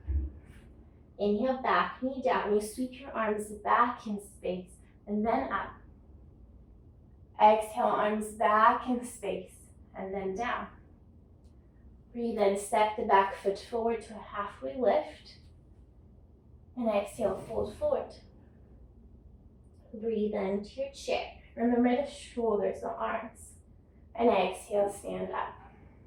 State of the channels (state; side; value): identical; both; correlation 1.00